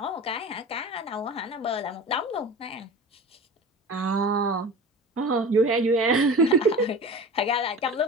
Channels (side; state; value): both; normal; correlation 0.35